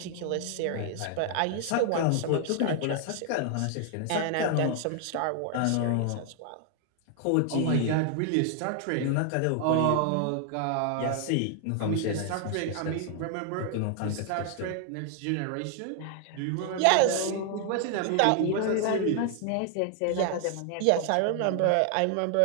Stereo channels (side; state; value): both; different; correlation 0.00